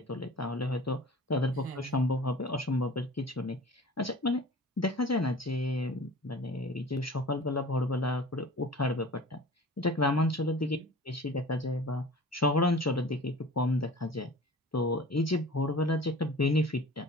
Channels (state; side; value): normal; both; correlation 0.42